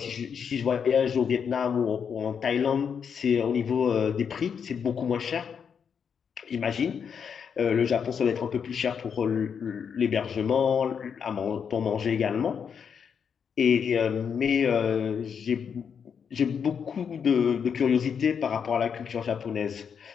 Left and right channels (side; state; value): right; quieter; 7.0 dB